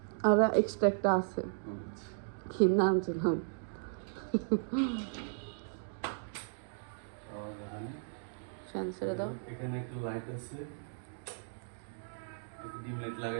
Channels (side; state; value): left; silent; digital silence